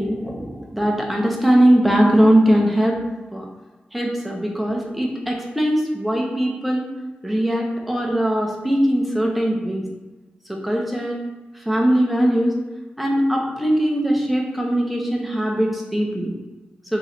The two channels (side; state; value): both; normal; correlation 0.96